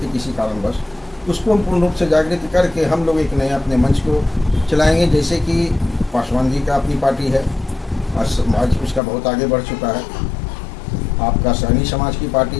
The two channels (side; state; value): right; drops out; at 9.0 s